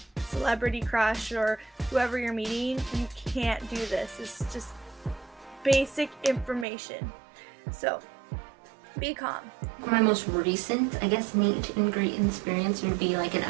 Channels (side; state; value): left; drops out; at 6.7 s